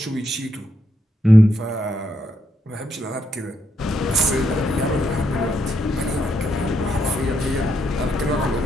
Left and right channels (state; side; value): normal; both; correlation 0.78